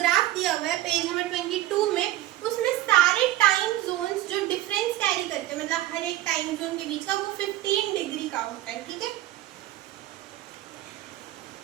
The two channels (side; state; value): left; quieter; 15.0 dB